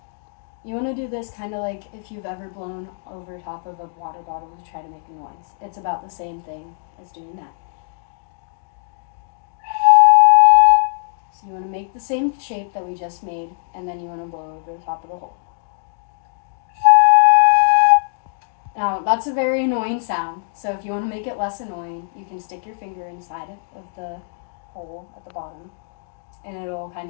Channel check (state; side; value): silent; right; digital silence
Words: You want to do this kind of like if you've ever blown over top of a water bottle to try to make a noise. It's about the same thing as doing that. So you want to make the same shape that we just made, and then you want to blow over the top of the hole. Now, that's a very annoying sound, so if you want to make it less annoying, you can stick your finger inside of the hole at the bottom, and it'll kind